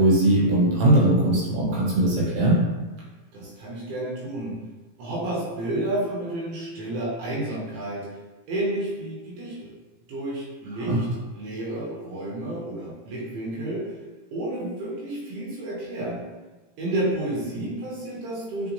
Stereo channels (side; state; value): left; late; 18 ms